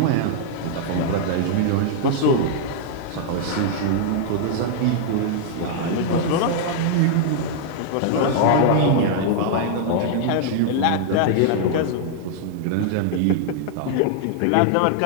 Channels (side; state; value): both; different; correlation -0.01